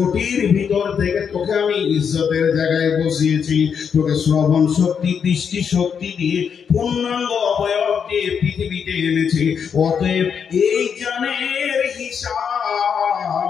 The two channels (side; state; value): right; quieter; 7.0 dB